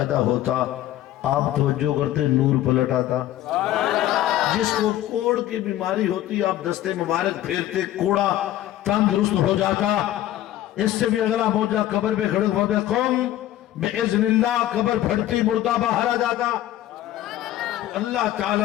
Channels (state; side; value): quieter; right; 13.6 dB